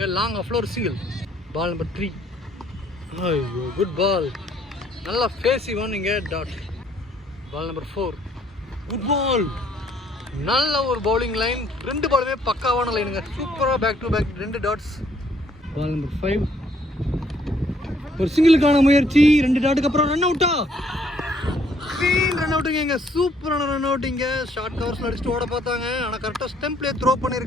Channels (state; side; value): normal; both; correlation 0.65